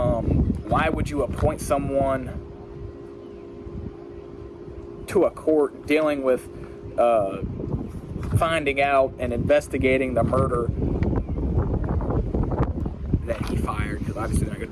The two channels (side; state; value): both; identical; correlation 1.00